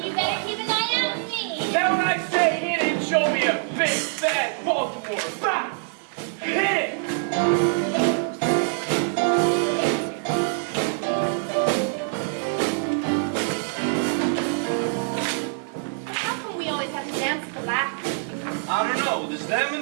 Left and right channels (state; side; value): silent; left; 62 dB below the other